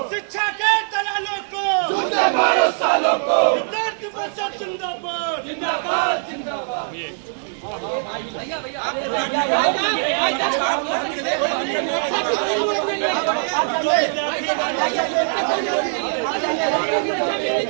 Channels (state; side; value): silent; left; 65 dB below the other